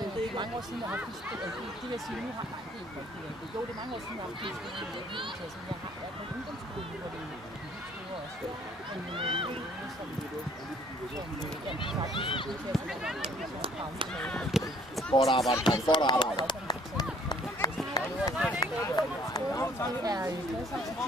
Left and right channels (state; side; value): normal; both; correlation 0.58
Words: ikke mange år siden, jeg har haft de vil sige, nu har jo, det er mange år siden, jeg har haft en som jeg har været på ungdomsskolen, hvor det er helt store også. Godt arbejde, godt arbejde.